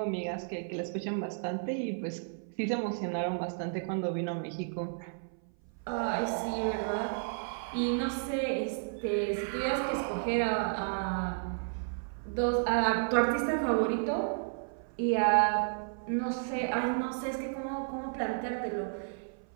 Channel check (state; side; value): silent; left; 56 dB below the other